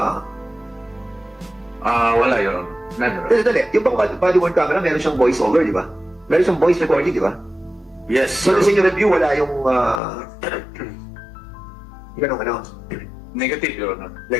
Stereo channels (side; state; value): right; drops out; at 10.0 s